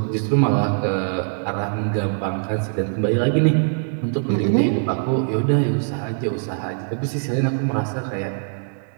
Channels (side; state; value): left; silent; 64 dB below the other